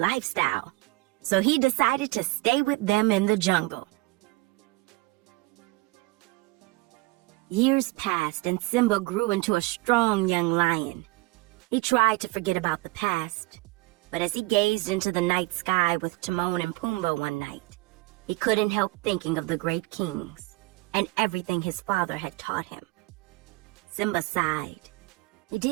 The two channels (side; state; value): left; quieter; 22.3 dB